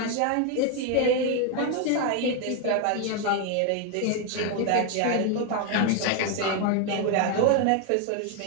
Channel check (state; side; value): different; both; correlation 0.01